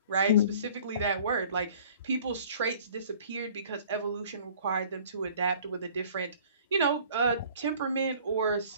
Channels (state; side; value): inverted; both; correlation -0.51